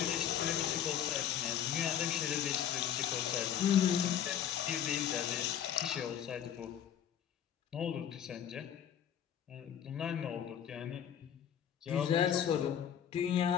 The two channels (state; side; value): quieter; right; 9.5 dB